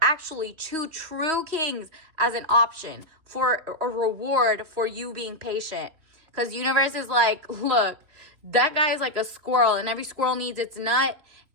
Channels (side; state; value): left; late; 3.0 ms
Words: actually 2 true kings as an option for a reward for you being patient. Because universe is like, look, that guy is like a squirrel and every squirrel needs its nut.